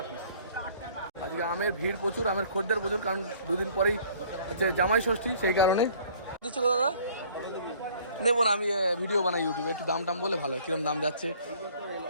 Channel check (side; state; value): both; inverted; correlation -0.55